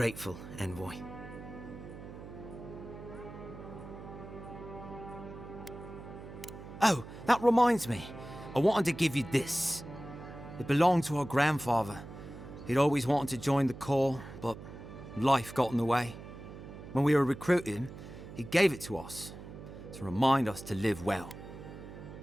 Envoy. Oh, that reminds me. I wanted to give you this. It belonged to our grandfather. He'd always wanted to join the Corps, but life got in the way. When we were recruiting, he gave it to us to remind us to live well.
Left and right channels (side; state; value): right; noise; hum, 13 dB below the sound